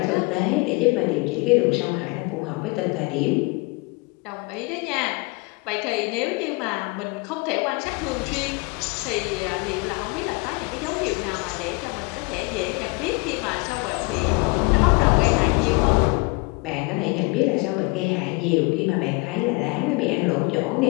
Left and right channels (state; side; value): quieter; right; 27.2 dB